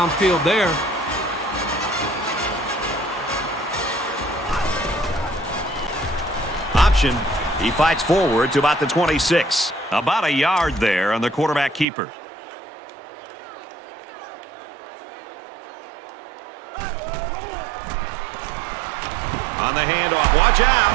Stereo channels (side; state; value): left; drops out; at 11.9 s